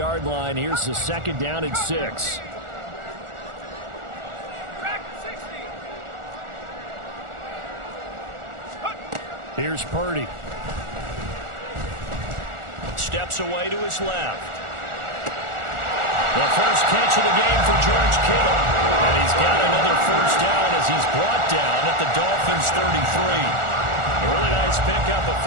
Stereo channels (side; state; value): left; late; 1.4 ms